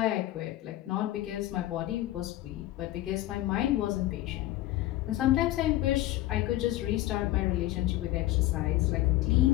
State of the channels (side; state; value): right; quieter; 15.7 dB